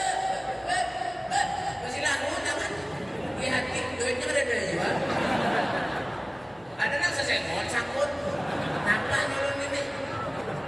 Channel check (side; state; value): left; noise; hum, 27 dB below the sound